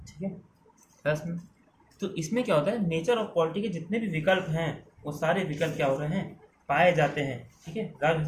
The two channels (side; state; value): both; identical; correlation 1.00